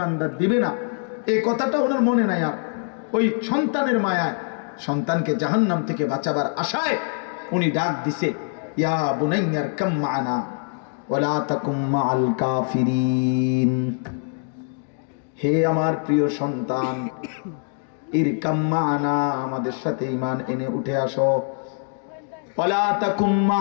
দিবে না, এই কথাটা ওনার মনে নাই। আর ওই সন্তানের মায়ায়, সন্তানকে জাহান্নাম থেকে বাঁচাবার আশায় উনি ডাক দিছে, ইয়া বুনাইয়ার কাম মা'না ওয়ালা তাকুম মা'আল কাফিরিন। হে আমার প্রিয় সন্তান, ইরকাম মা'না, আমাদের সাথে ঈমান এনে উঠে আসো। ওয়ালা তাকুম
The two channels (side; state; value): right; silent; 55 dB below the other